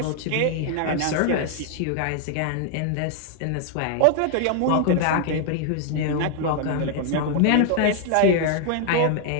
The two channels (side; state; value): both; different; correlation 0.00